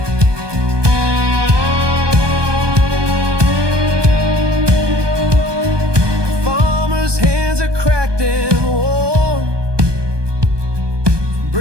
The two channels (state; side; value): late; left; 1.2 ms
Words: Farmer's hands are cracked and worn,